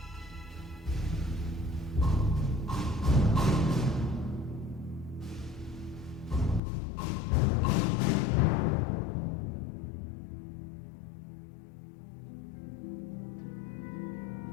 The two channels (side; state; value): right; drops out; at 6.6 s